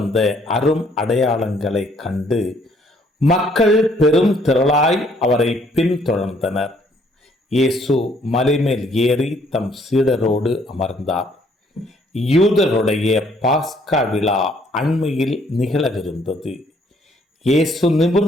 அரும் அடையாளங்களை கண்டு மக்கள் பெரும் திரளாய் அவரை பின்தொடர்ந்தனர். இயேசு மலைமேல் ஏறி தம் சீடரோடு அமர்ந்தார். யூதருடைய பாஸ்கா விழா அண்மையில் நிகழவிருந்தது. இயேசு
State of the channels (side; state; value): both; normal; correlation 0.65